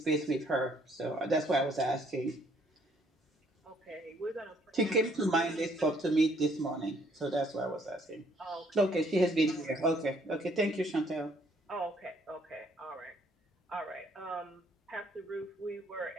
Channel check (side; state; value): both; normal; correlation 0.65